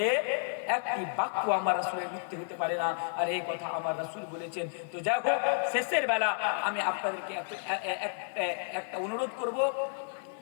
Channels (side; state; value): right; silent; 57 dB below the other